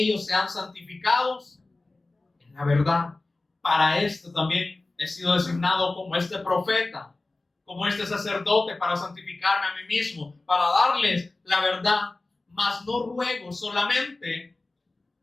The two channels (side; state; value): right; quieter; 3.1 dB